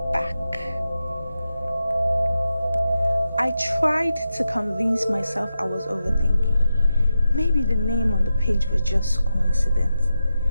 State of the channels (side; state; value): both; inverted; correlation -0.89